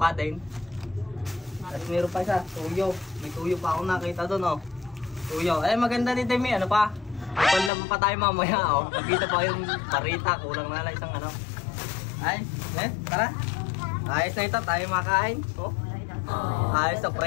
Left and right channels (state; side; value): drops out; right; at 7.7 s